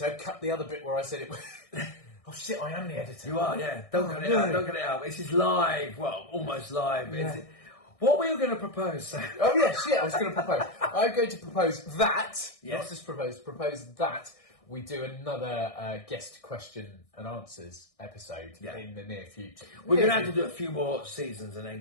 cut the other bit where I said it was... Oh shit, I am the editor. You are, yeah. Don't cut it out. Don't cut it out. This is live. Well, almost live. Yeah. What were you going to propose, Sam? Oh yeah, shit, I was going to propose. I'm going to propose that, Yes. not just propose that we do another guest question and answers episode in the near future. We're going to have to do a few more seasons and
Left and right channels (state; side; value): late; right; 1.6 ms